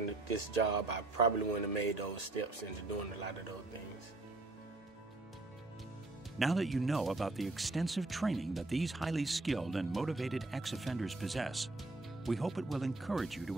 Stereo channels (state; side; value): quieter; left; 3.0 dB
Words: this job, I probably wouldn't have made those steps into doing a lot of those things. Now that you know about the extensive training that these highly skilled and motivated ex-offenders possess, we hope it will encourage you